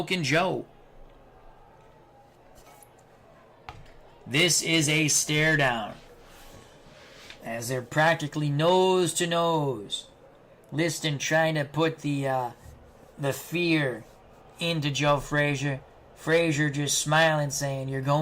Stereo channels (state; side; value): identical; both; correlation 1.00